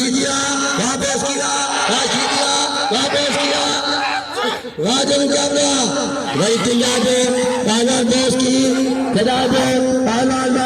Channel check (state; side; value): identical; both; correlation 1.00